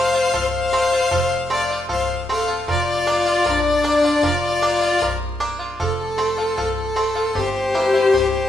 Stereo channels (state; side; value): normal; both; correlation 0.81